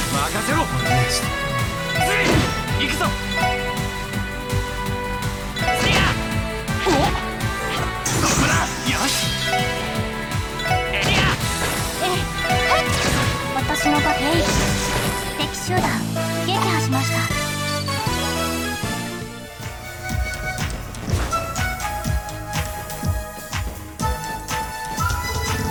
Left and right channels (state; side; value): identical; both; correlation 1.00